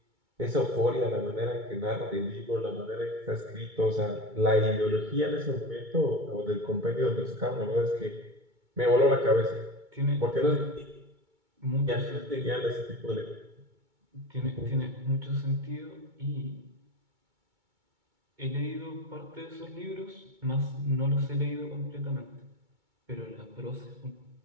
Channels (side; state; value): left; late; 2.2 ms